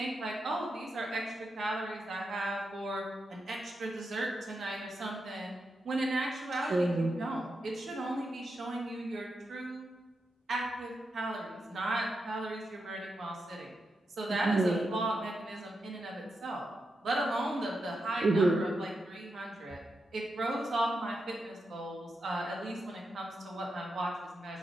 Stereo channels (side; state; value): both; normal; correlation 0.86